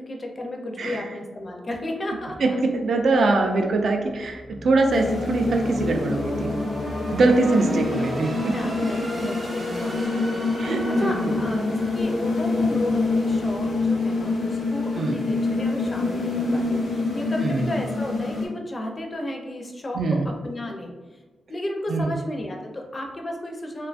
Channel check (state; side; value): normal; both; correlation 0.83